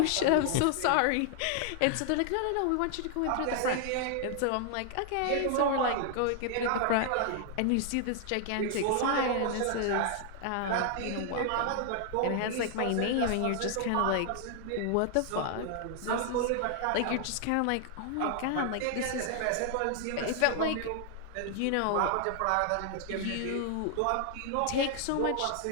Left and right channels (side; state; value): both; different; correlation 0.00